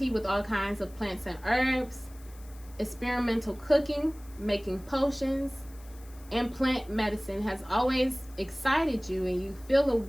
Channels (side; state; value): left; noise; hiss, 24 dB below the sound